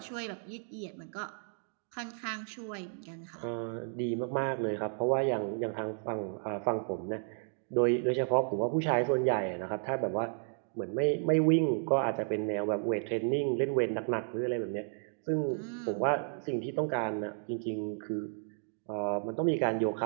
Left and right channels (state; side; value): silent; left; 56 dB below the other